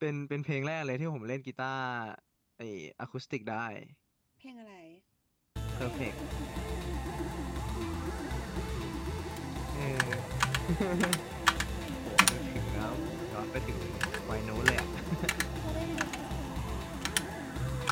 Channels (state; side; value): identical; both; correlation 1.00